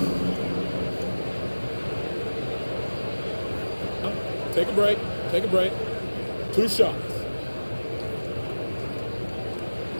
Take a break. Take a break. 2 shots.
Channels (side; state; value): both; inverted; correlation -1.00